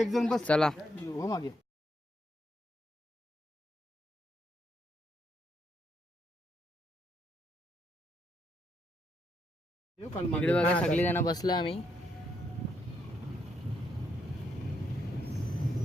जण बस चला हो मागे. इकडे बघा सगळी जण बसलो आम्ही.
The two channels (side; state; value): both; normal; correlation 0.78